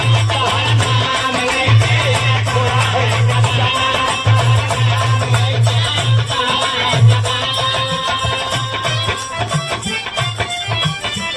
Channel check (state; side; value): identical; both; correlation 1.00